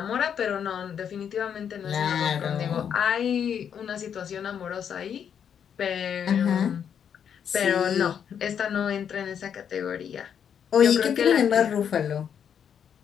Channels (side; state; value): right; quieter; 8.1 dB